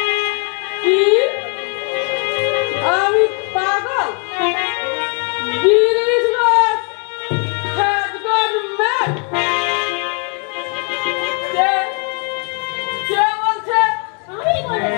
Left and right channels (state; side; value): quieter; right; 38.8 dB